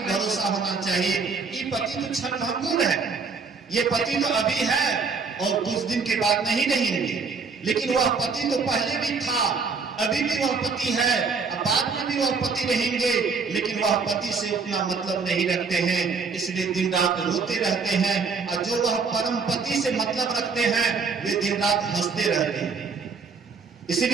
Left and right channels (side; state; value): left; quieter; 5.0 dB